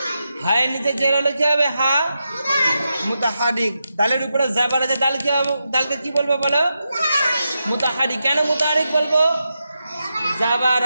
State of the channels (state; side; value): inverted; both; correlation -0.87